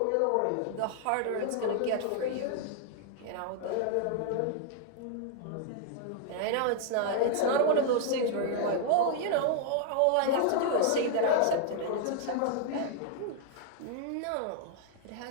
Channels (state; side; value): different; both; correlation 0.00